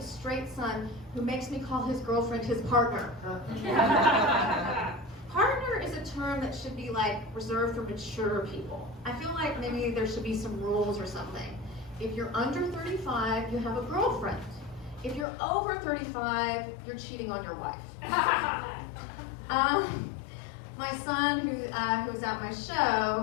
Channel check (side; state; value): right; drops out; at 15.2 s